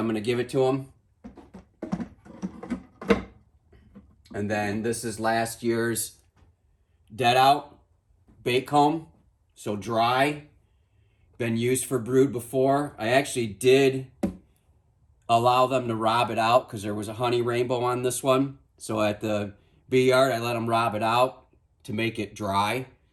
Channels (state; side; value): identical; both; correlation 1.00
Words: going to give it to them. And then this is last year's dead out bait comb. So dry, been used for brood before. I actually did allow them to rob it out because there was a honey rainbow on this one. So at the bee yard, I let them rob it out to make it dry.